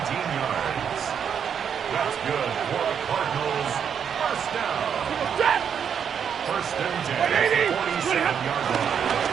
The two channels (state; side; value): quieter; left; 7.7 dB